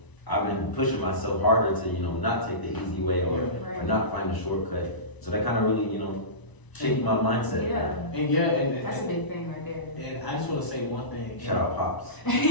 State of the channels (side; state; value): right; late; 1.0 ms